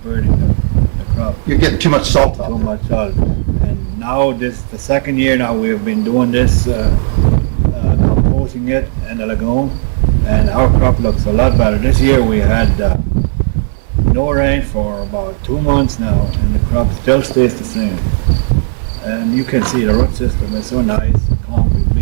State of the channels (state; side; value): silent; left; digital silence